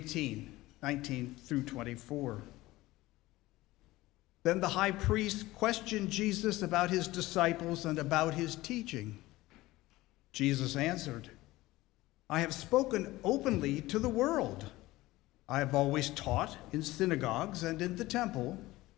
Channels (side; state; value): right; quieter; 18.4 dB